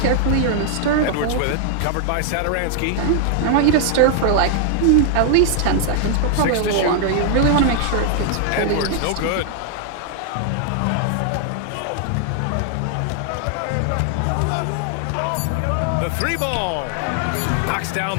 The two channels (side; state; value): both; different; correlation 0.00